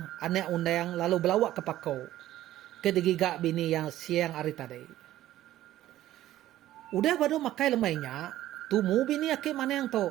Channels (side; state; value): left; quieter; 13.9 dB